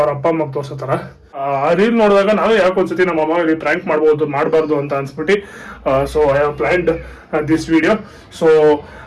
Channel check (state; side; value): identical; both; correlation 1.00